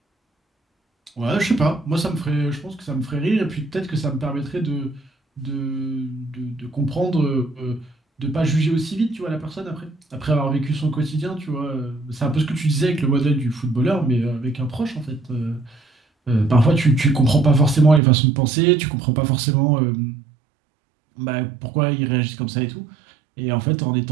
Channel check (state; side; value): drops out; left; at 18.0 s